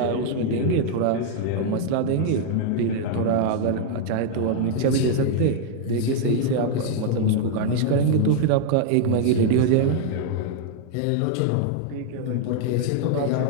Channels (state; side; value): different; both; correlation -0.01